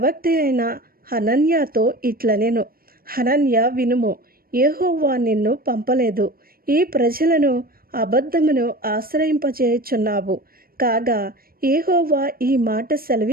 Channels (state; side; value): late; left; 0.43 ms